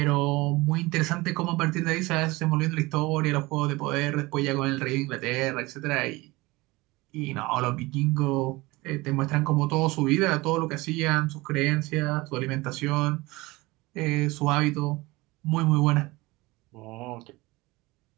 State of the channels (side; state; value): left; quieter; 21.8 dB